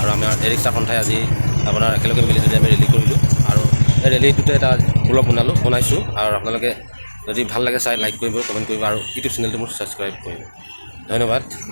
আৰু আমাৰ ৰিক্সা সন্থাই আজি আপোনাৰ একেলগে মিলি যদি আমি ৰেলী কৰিলোঁ আৰু এই ৰেলীটোতে এটা ব্লগ বনাইছোঁ আৰু আপোনালোকে যদি ভাল লাগে চাই লাইক কৰিব কমেণ্ট কৰিব আৰু ইউটিউব চেনেলটো মোৰ ছাবস্ক্ৰাইব কৰিব ধন্যবাদ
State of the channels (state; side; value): inverted; both; correlation -1.00